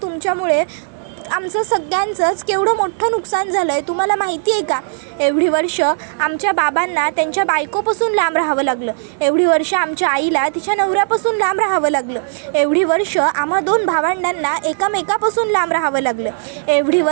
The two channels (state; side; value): silent; left; digital silence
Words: तुमच्यामुळे आमचं सगळ्यांचंच केवढं मोठं नुकसान झालं आहे, तुम्हाला माहिती आहे का. एवढी वर्ष आमच्या बाबांना त्यांच्या बायकोपासून लांब राहावं लागलं, एवढी वर्ष आमच्या आईला तिच्या नवऱ्यापासून लांब राहावं लागलं, एवढी वर्ष आम्हा 2 भावंडांना एकामेकापासून लांब राहावं लागलं, एवढी